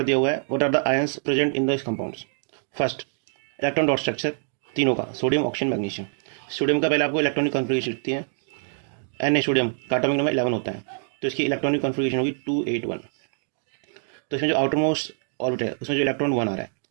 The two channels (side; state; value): left; silent; digital silence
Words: दिया हुआ है what are the ions present in this compounds. First, electron dot structure तीनों का, सोडियम, ऑक्सीजन, मैग्नीशियम। सोडियम का पहले आपको इलेक्ट्रॉनिक कॉन्फ़िगरेशन लिखती है। Na सोडियम का एटॉमिक नंबर 11 होता है, तो इसकी इलेक्ट्रॉनिक कॉन्फ़िगरेशन होगी 281। तो इसमें जो आउटर मोस्ट ऑर्बिट है उसमें जो इलेक्ट्रॉन 1 आ रहा है,